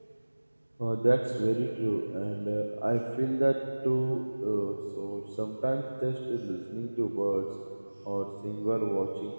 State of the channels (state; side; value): inverted; both; correlation -1.00